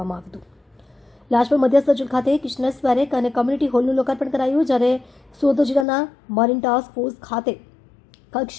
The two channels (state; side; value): drops out; right; at 5.9 s